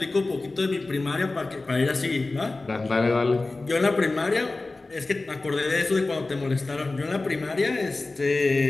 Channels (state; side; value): quieter; right; 3.3 dB